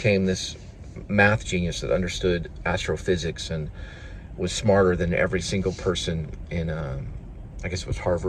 this math genius that understood astrophysics and was smarter than every single person in, I guess it was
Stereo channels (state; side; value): identical; both; correlation 1.00